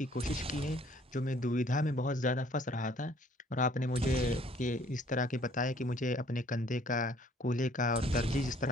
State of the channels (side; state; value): both; normal; correlation 0.59